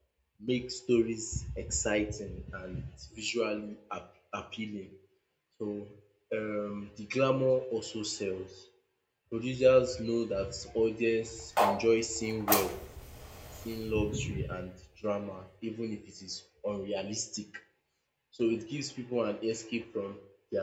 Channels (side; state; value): both; identical; correlation 1.00